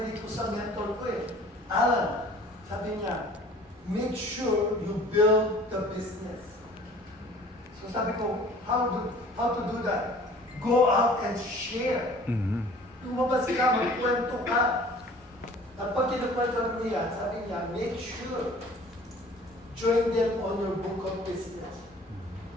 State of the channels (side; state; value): both; normal; correlation 0.49